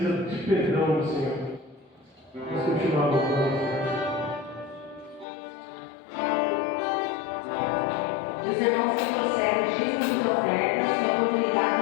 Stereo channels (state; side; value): drops out; right; at 5.2 s